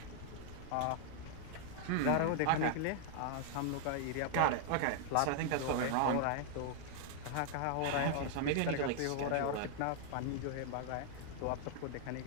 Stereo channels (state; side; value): different; both; correlation 0.00